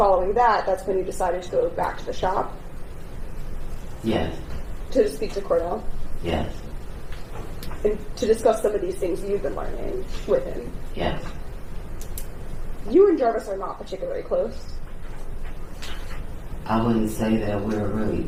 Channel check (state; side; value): identical; both; correlation 1.00